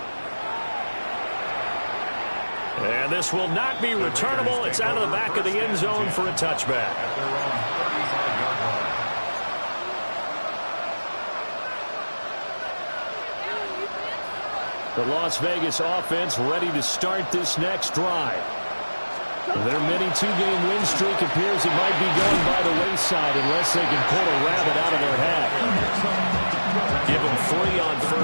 And this will not be returnable. It's out of the back of the end zone for a touchback. The Las Vegas offense ready to start this next drive. Their mini 2-game win streak appears it might be going by the wayside unless they can pull a rabbit out of their hat. Give them 3 on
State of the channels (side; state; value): both; inverted; correlation -1.00